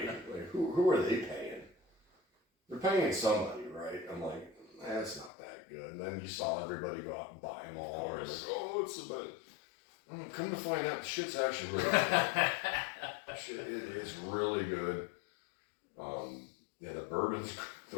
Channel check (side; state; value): right; drops out; at 5.3 s